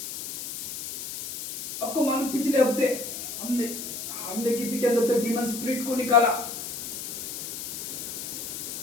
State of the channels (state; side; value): noise; left; hiss, 7 dB below the sound